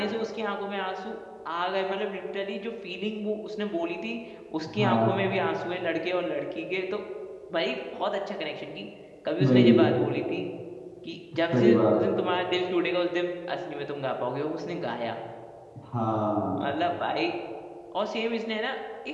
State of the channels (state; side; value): identical; both; correlation 1.00